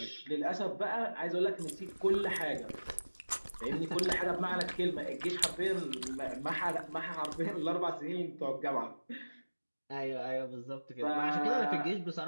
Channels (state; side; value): inverted; both; correlation -1.00